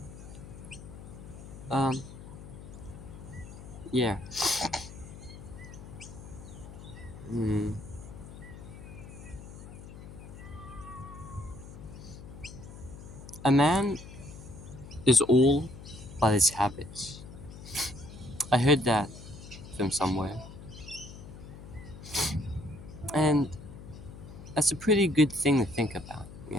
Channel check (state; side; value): noise; left; hum, 14 dB below the sound